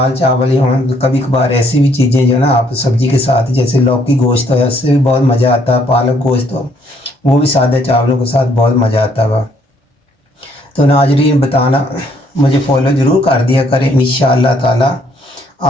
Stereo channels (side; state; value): both; normal; correlation 0.67